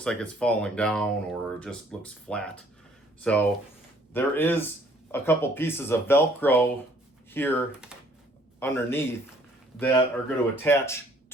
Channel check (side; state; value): both; normal; correlation 0.60